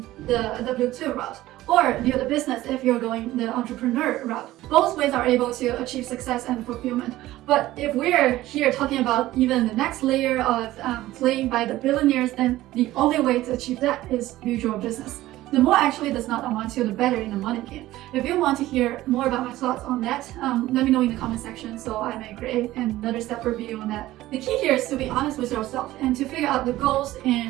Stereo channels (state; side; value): quieter; left; 16.0 dB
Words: the W2 route, or build a business if you're going the entrepreneur route. Both ways are able to achieve success and fulfillment. But if we're here talking about even the next layer of playing by the billionaires, then the only way to achieve that is build your business. The more actually does not amount to, the better in the money game. If you want to hear more about my thoughts on that, let me know in the comment section so I may create another separate video on that. The key here is to be honest with yourself and to figure out the goals